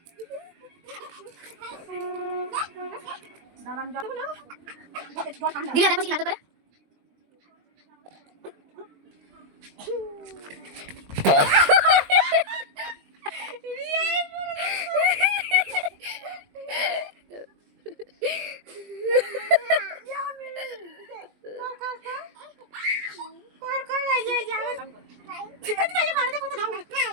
দিদা দেখো কি নাটক করে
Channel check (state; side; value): late; left; 20 ms